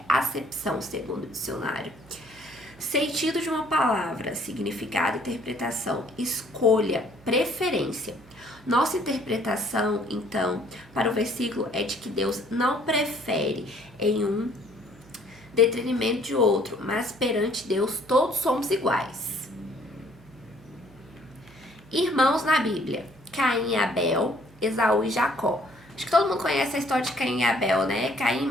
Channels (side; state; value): right; noise; hum, 24 dB below the sound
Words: acepção segundo o dicionário? Sentido de uma palavra, significado, interpretação, escolha, preferência. Nossa interpretação, então, para o versículo é de que Deus não prefere em um detrimento de outro, mas perante Deus todos somos iguais. Irmãos na Bíblia: Caim e Abel, Esaú e Jacó. Acho que todo mundo conhece a história de Caim e Abel, né? Caim